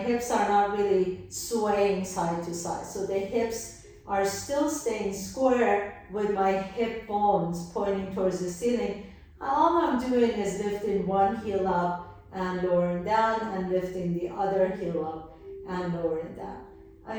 are not really swaying side to side. So the hips are still staying square with my hip bones pointing towards the ceiling. All I'm doing is lifting one heel up and lowering down, and lifting the other heel up and lowering down.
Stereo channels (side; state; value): both; identical; correlation 1.00